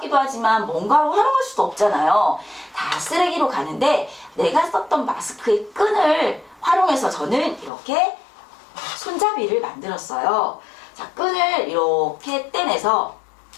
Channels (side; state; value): right; drops out; at 7.7 s